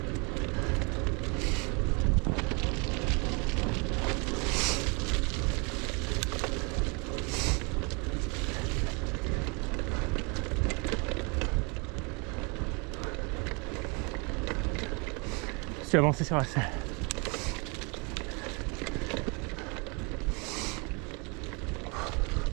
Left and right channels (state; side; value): quieter; left; 31.6 dB